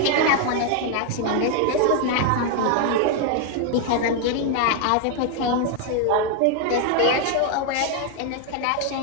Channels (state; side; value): different; both; correlation 0.00